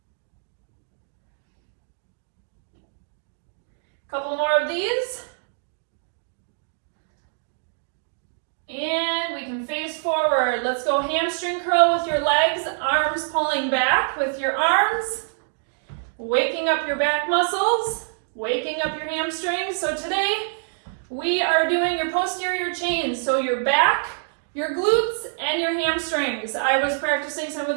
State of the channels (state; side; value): silent; left; digital silence